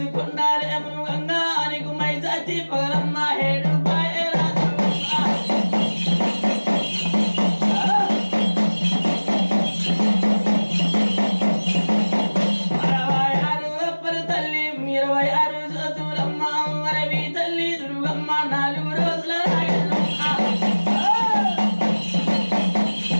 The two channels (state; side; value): inverted; both; correlation -1.00